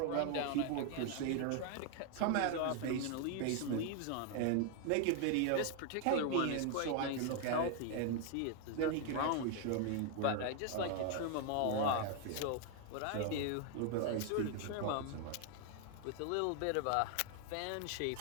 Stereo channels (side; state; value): both; different; correlation 0.00